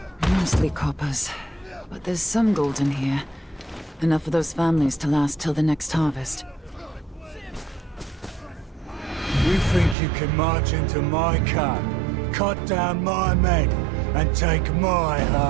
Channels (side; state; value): left; drops out; at 10.0 s